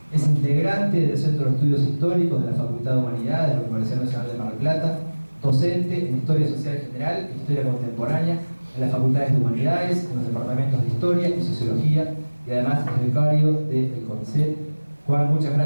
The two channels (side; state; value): both; inverted; correlation -1.00